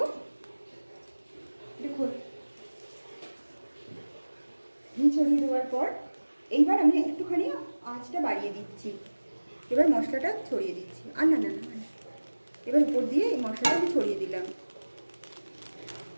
দেখো ঘি ছড়িয়ে দেওয়ার পর এইবার আমি একটুখানি আঁচটা বাড়িয়ে দিচ্ছি। এবার মশলাটা ছড়িয়ে দিচ্ছি, আর না না না, এবার উপর দিয়ে এই মশলাটা আমি ছড়িয়ে দিলাম।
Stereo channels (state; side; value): inverted; both; correlation -1.00